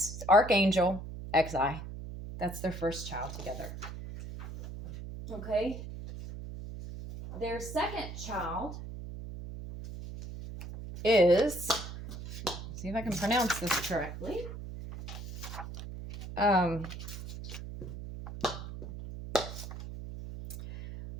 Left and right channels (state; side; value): noise; right; hum, 9 dB below the sound